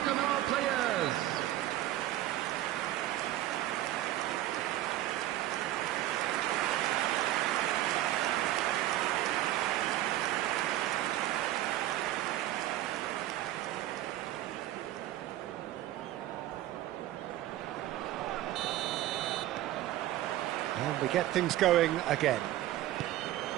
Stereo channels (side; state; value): left; quieter; 14.4 dB